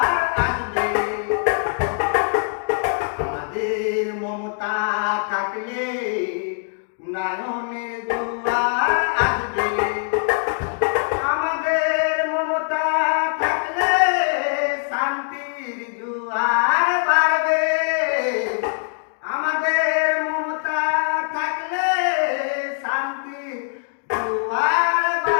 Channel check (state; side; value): silent; right; 62 dB below the other